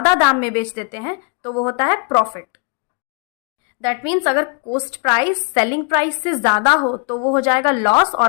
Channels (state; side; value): quieter; right; 34.9 dB